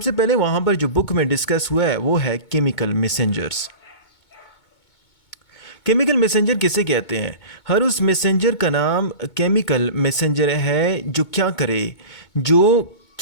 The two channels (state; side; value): late; right; 2.2 ms